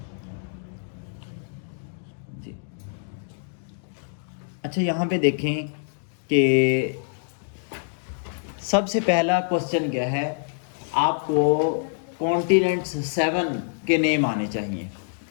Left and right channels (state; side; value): silent; right; digital silence